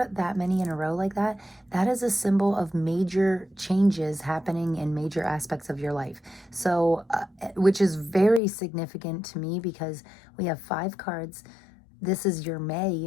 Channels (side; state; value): right; drops out; at 8.4 s